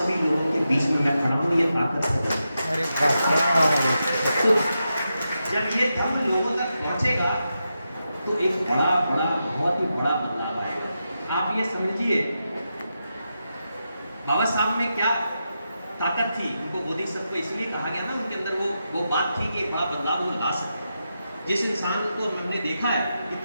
लोगों के बीच में मैं खड़ा हूं, ये ताकत है। अरे वाह! तो जब ये धर्म लोगों तक पहुंचेगा तो एक बहुत ही बड़ा बदलाव आएगा। आप ये समझिए, बाबा साहब में क्या ताकत थी, उनको बोधिसत्व इसलिए कहा गया ना, उनके अंदर वो बात थी कि बड़ा बदलाव वो ला सकते। जिस इंसान को हमने देखा है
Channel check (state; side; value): inverted; both; correlation -0.88